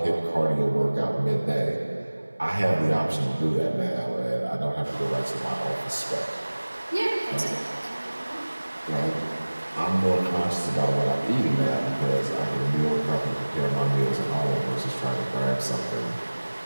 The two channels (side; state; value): both; inverted; correlation -1.00